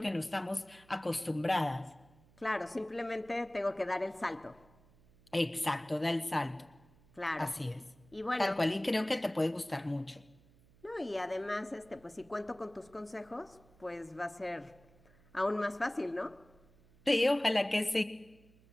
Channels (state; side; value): noise; right; hum, 28 dB below the sound